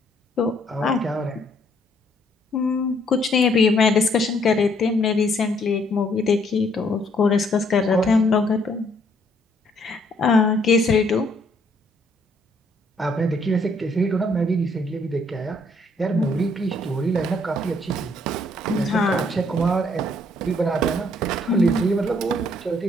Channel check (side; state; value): both; normal; correlation 0.67